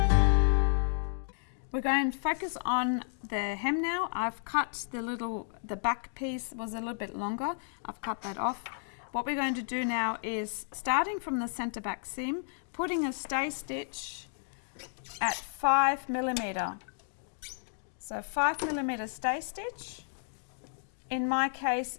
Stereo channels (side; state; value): right; silent; digital silence